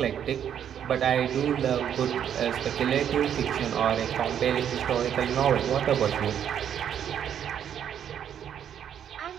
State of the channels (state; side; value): quieter; left; 9.2 dB